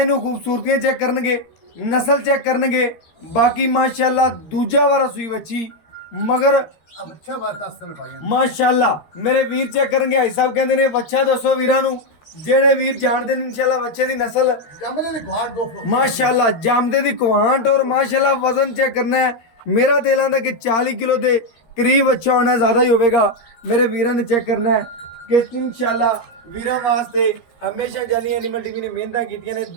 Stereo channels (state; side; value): late; right; 13 ms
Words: नू खूबसूरतियां चेक करनगे, नस्ल चेक करनगे। बाकी माशाल्लाह दूजा वारा सूई बच्ची मगर माशाल्लाह। मेरे वीर चेक करनगे भाई साहब कहते ने बच्चा दसो वीरां नू जेड़े वीर जानते हैं इंशाल्लाह बच्चे दी नस्ल माशाल्लाह जामदे दी कुआंट और माशाल्लाह वजन चेक करना है। मेरा दिल आंदा कि 40 किलो के करीब अच्छा होना, ज़्यादा ही होगा। मेरे वीरां ने चेक करना है कि इंशाल्लाह वीरां वास्ते हमेशा जानी एनिमल टीवी ने मेहनत कीतियां ने।